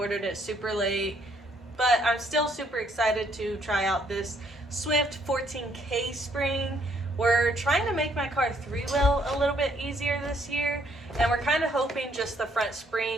it super late, but I'm still super excited to try out this Swift 14K spring. We're trying to make my car three-wheel a little bit easier this year, and we're kind of hoping just the front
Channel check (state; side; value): normal; both; correlation 0.68